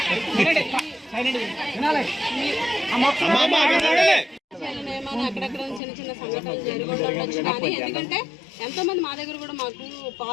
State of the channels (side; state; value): right; drops out; at 5.8 s